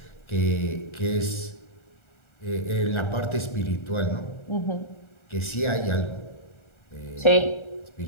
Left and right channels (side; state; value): right; late; 1.4 ms